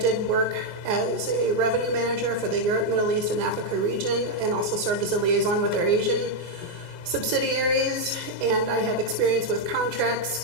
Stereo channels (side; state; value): left; late; 24 ms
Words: work as a revenue manager for the Europe, Middle East, and Africa region, and also served as a liaison with our Asian subsidiaries, and I have experience with contracts,